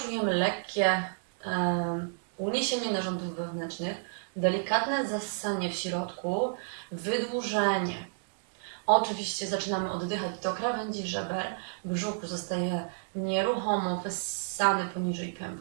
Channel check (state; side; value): silent; left; digital silence